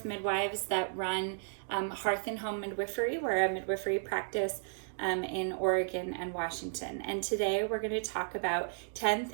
midwives that run Hearth and Home Midwifery. We're a midwifery practice in Oregon and Washington. And today we're going to talk about 10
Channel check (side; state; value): left; silent; digital silence